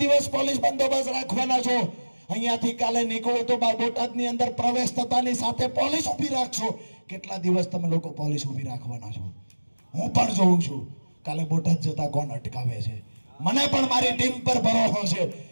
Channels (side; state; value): both; inverted; correlation -1.00